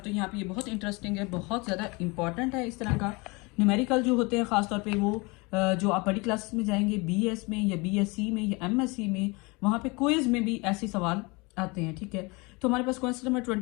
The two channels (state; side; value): quieter; right; 26.9 dB